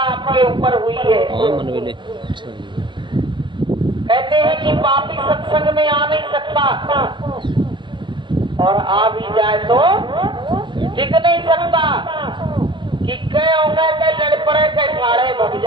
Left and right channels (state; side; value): late; left; 0.23 ms